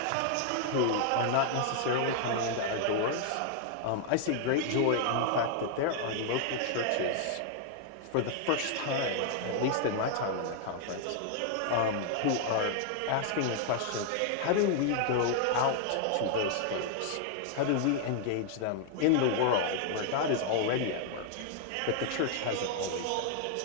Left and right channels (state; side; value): different; both; correlation 0.00